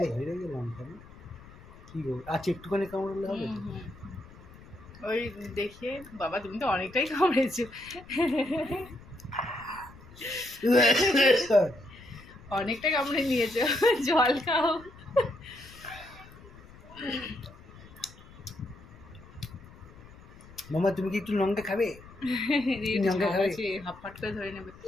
হেরে গেলাম কেন? কি গো, আচ্ছা একটুখানি কামড়ালে হবে তো? ওই দেখে বাবা তুমি তো অনেকটাই কামড়েছো, অনেকটা কামড়ে নিয়েছো, জল খাও। মামা তুমি কি একটু লঙ্কা খাবে? লঙ্কা খাবে? হাফ ফাট করে ধরে নেবে।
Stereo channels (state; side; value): noise; left; rumble, 20 dB below the sound